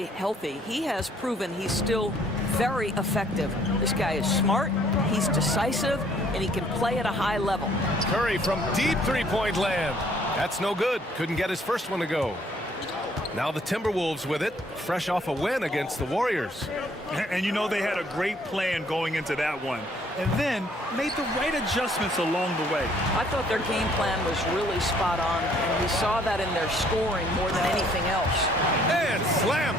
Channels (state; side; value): normal; both; correlation 0.62